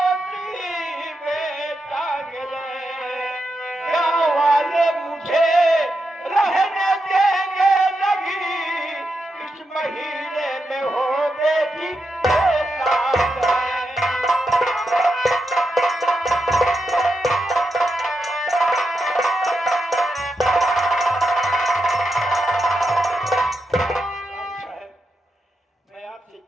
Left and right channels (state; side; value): normal; both; correlation 0.86